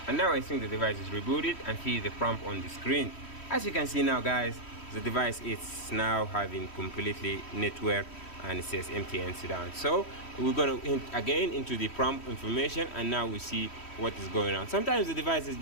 and now I think the device is rebooted and see the prompt on the screen. As you can see now guys, the device is now having completely network, and it says MTN down. So we're gonna hit again into the prompt information, and now we see what is going on. Sometimes the device is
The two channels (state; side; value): late; right; 3.1 ms